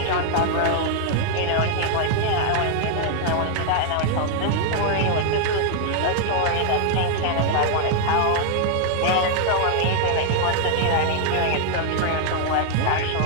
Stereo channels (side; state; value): both; different; correlation 0.00